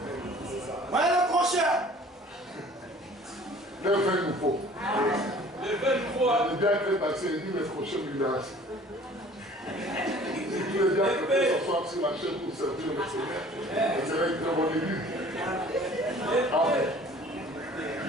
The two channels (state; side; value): normal; both; correlation 0.50